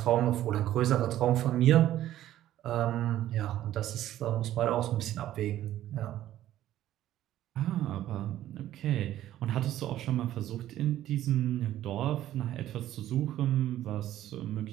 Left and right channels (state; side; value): quieter; left; 13.0 dB